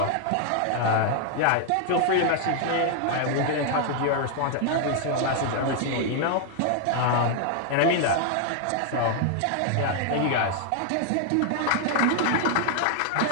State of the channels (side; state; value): both; different; correlation 0.00